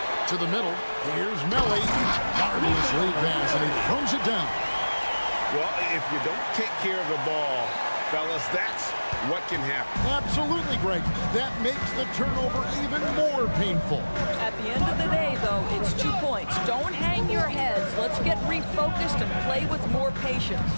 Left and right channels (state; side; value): inverted; both; correlation -1.00